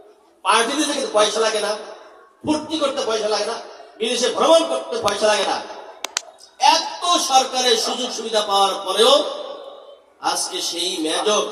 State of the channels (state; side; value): identical; both; correlation 1.00